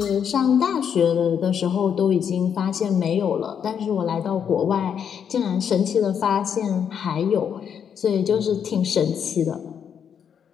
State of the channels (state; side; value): quieter; right; 7.9 dB